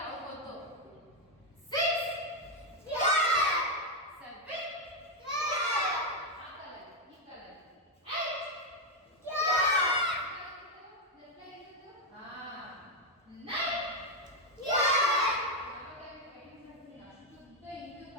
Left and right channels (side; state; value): both; normal; correlation 0.03